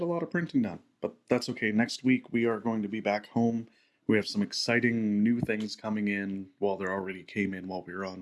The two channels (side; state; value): both; identical; correlation 1.00